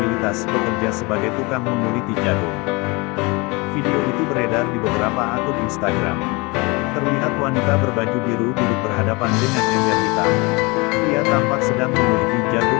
bekerja sebagai tukang menguliti jagung. Video itu beredar di beberapa akun Instagram. Terlihat wanita berbaju biru duduk berhadapan dengan ember hitam. Ia tampak sedang menguliti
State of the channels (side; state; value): right; quieter; 26.6 dB